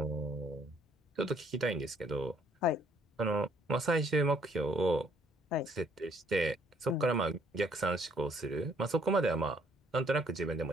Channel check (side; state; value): both; normal; correlation 0.64